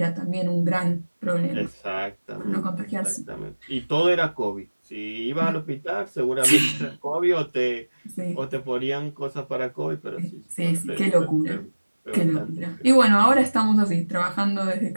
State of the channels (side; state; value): both; inverted; correlation -1.00